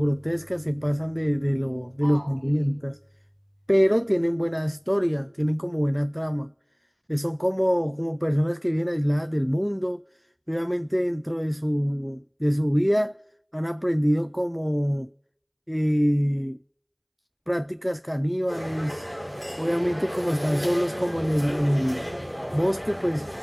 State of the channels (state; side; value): identical; both; correlation 1.00